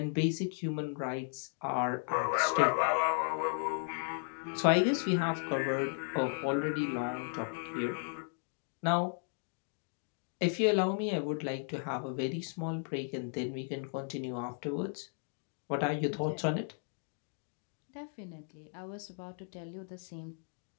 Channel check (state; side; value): silent; right; 54 dB below the other